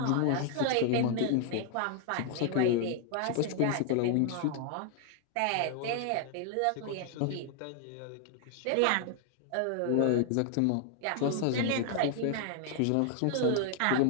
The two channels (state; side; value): different; both; correlation 0.00